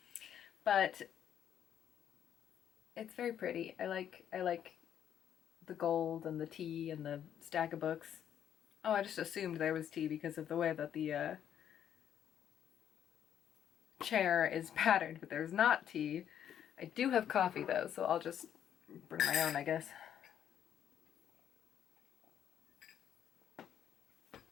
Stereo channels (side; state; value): right; quieter; 9.7 dB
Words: But it's very pretty. I like the gold and the tea and the stack of books. Oh, I just assumed there was tea because of the way that the chair is patterned, but there's not tea. I do have coffee though, so I'll just bring my own, I guess.